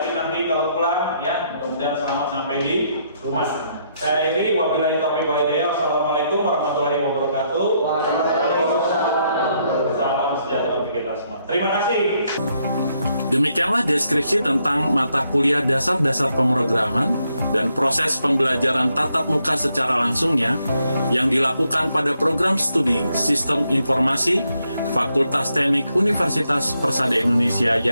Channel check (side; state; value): both; inverted; correlation -0.76